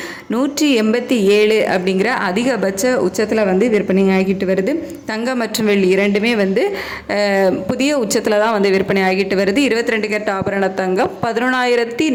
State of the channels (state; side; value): identical; both; correlation 1.00